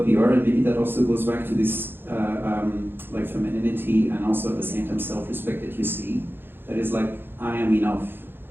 we are, and maybe that also goes back to this like femininity, and also at the same time self-respect that you see. That is like, I am enough.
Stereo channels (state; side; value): late; left; 0.10 ms